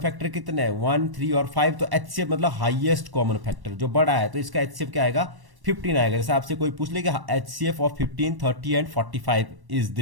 कितने हैं 1, 3 और 5, तो HCF मतलब हाईएस्ट कॉमन फैक्टर जो बड़ा है, तो इसका HCF क्या आएगा 15 आएगा। जैसे आपसे कोई पूछ ले कि HCF of 15, 30 and 45 is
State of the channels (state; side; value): late; left; 1.1 ms